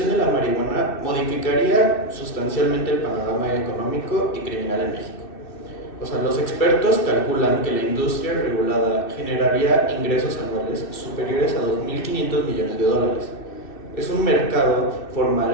de la marihuana modificaría sustancialmente el panorama económico y criminal en México. O sea, los expertos calculan que la industria regulada generaría ingresos anuales superiores a $2.500 millones. Es un mercado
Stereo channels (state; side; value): late; right; 2.6 ms